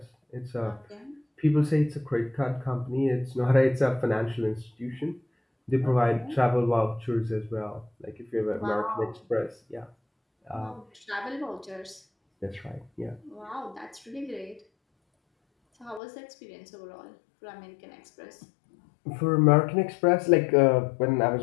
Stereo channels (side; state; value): right; drops out; at 16.0 s